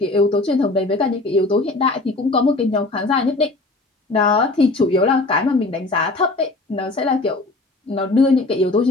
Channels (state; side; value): quieter; right; 3.1 dB